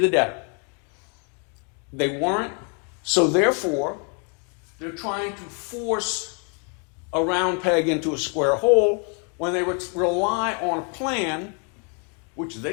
debtor. They weren't, so therefore, they're trying to force a round peg into a square hole when they rely on a plan, which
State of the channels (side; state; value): right; quieter; 38.1 dB